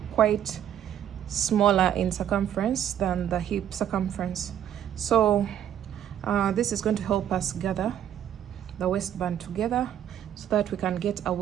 quite smaller in circumference than the hip circumference. So this is going to help us gather the waistband together so that we can get a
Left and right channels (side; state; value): left; quieter; 10.4 dB